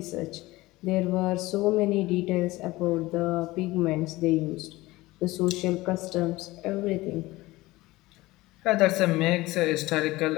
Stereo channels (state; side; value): quieter; right; 19.4 dB